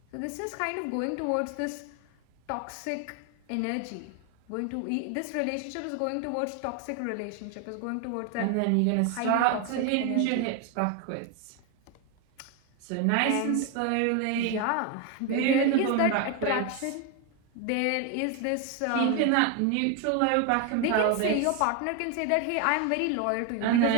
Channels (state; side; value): different; both; correlation 0.01